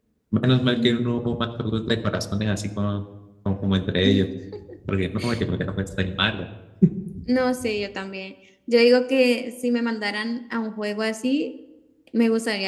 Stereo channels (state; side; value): identical; both; correlation 1.00